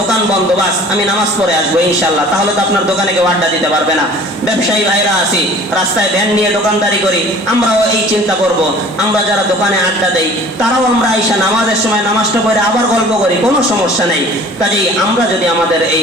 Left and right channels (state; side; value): normal; both; correlation 0.48